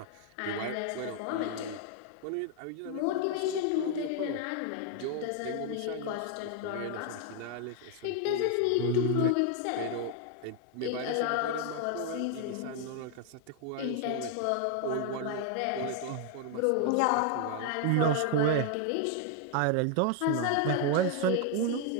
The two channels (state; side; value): different; both; correlation 0.00